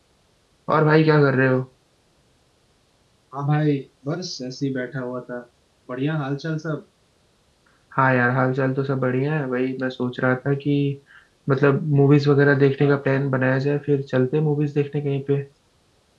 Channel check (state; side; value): identical; both; correlation 1.00